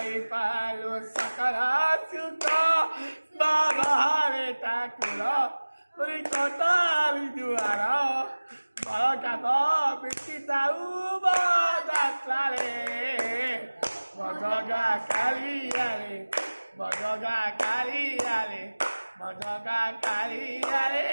পালো সকলা সুখ বাবারে ঠাকুর কতালি দুয়ার বড় কাব বেশি দাউ বাদাতলারে মজগা কালিয়ালে মজগা কালিয়ালে মজগা কালিয়ালে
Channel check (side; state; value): both; inverted; correlation -1.00